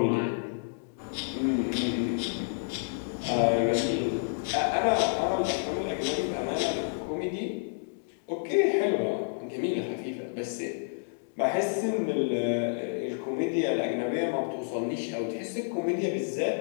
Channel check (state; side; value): silent; right; digital silence